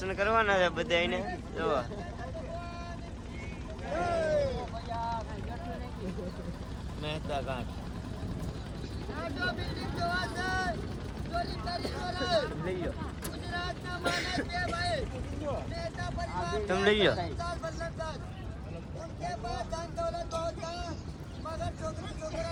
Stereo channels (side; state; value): both; identical; correlation 1.00